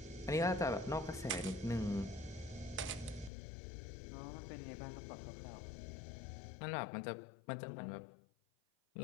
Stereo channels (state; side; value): drops out; right; at 3.3 s